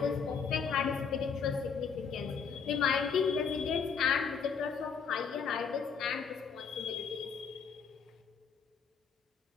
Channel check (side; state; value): right; quieter; 6.1 dB